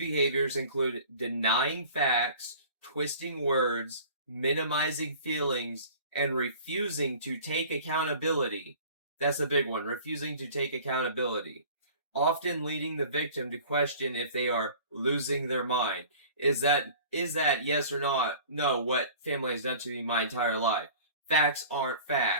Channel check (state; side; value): inverted; both; correlation -0.44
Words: include denying facts, twisting words, minimizing feelings, and refusing to take accountability. That's a big one. Refusing to take accountability. Often leading the victim to question if they are losing their mind. Is that yes or not? No, what family has done to me my entire life. Facts aren't